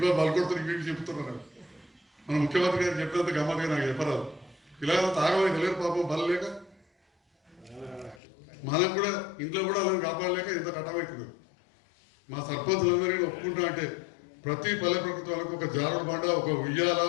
బలు కొడుతారు, ఇవి చెప్తున్నారు. మన ముఖ్యమంత్రి గారు చెప్పినంత గమ్మత్తుగా నాకు చెప్పరాదు. పిల్లలంతా ఆగమని తెలియదు పాపం బలు లేక, మనం కూడా ఇంట్లో కూడా అలా కాపాడలేక ఎంత కట్టమవుతుంది. మా సర్పంచులందరినీ ఒప్పుకుంటా అంటే ప్రతి పల్లె ప్రకృతి వాళ్ళకు ఒక జారుడు బండ, ఒక ఉయ్యాల,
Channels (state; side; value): drops out; right; at 8.2 s